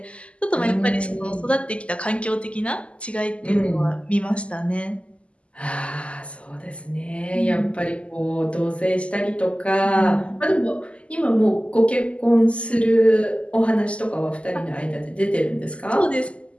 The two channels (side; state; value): right; late; 0.057 ms